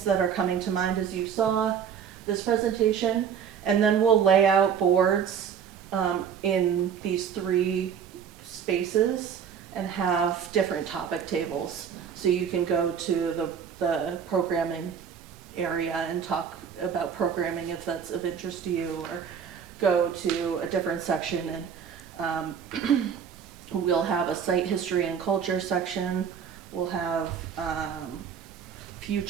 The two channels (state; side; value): quieter; left; 7.6 dB